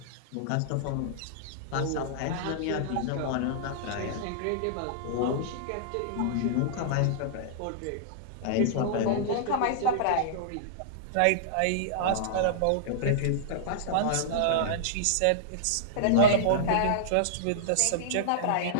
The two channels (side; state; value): both; different; correlation -0.02